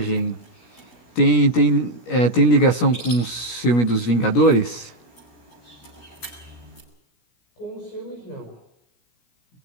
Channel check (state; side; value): late; right; 17 ms